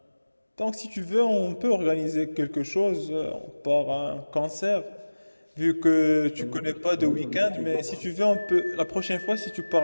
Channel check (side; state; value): both; inverted; correlation -1.00